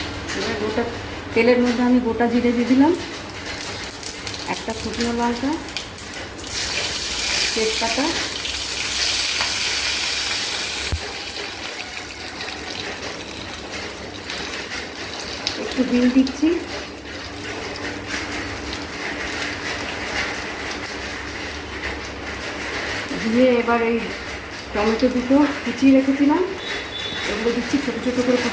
এবার গোটা তেলের মধ্যে আমি গোটা জিরে দিয়ে দিলাম, একটা শুকনো লঙ্কা, তেজপাতা, একটু বিন দিচ্ছি, দিয়ে এবার এই টমেটো দুটো কুচিয়ে রেখেছিলাম ওগুলো দিচ্ছি, ছোটো ছোটো করে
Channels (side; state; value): both; identical; correlation 1.00